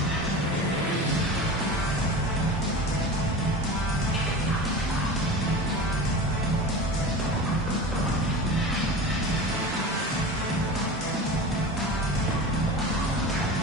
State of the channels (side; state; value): both; normal; correlation 0.32